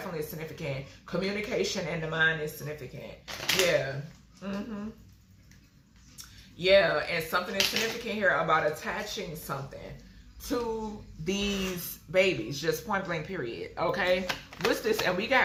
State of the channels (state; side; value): identical; both; correlation 1.00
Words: significant. Communication and the mind is significant. Yeah. Yeah, and something is significant here about attaching something to these babies, just point blank, period. Okay, what's this? And we